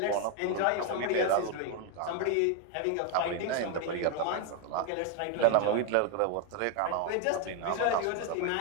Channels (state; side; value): different; both; correlation 0.01